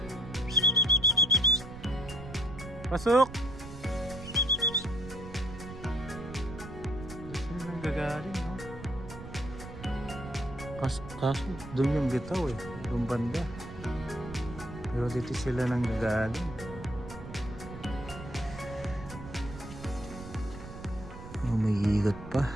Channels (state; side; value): noise; right; rumble, 13 dB below the sound